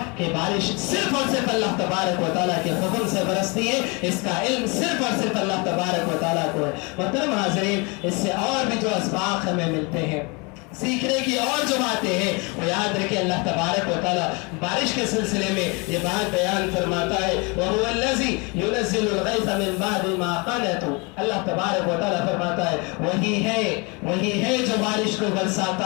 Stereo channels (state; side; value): quieter; right; 29.5 dB